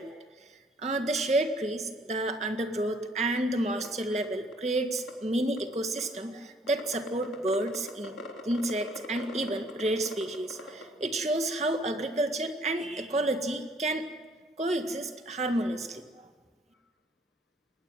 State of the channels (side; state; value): both; normal; correlation 0.61